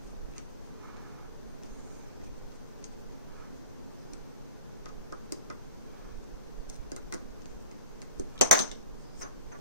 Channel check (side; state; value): both; inverted; correlation -0.38